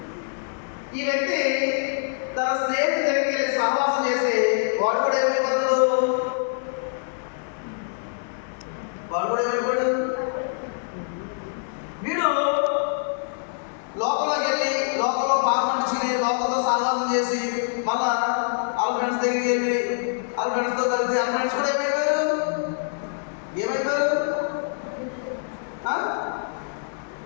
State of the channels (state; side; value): silent; right; 62 dB below the other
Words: ఈ వ్యక్తి తన స్నేహితుడి దగ్గరికి వెళ్ళి సహవాసం చేస్తే వాడు కూడా ఏమైపోతాడు? వీడు లోకంలోకి వెళ్ళి లోకంలో పాపం చేసి లోకంలో సహవాసం చేసి మళ్ళా వాళ్ళ ఫ్రెండ్స్ దగ్గరికి వెళ్ళి వాళ్ళ ఫ్రెండ్స్తో కలిసి వాళ్ళ ఫ్రెండ్స్ కూడా ఏమైపోయారు?